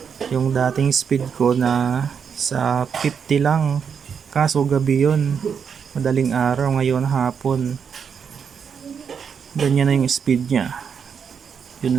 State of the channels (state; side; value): quieter; left; 6.8 dB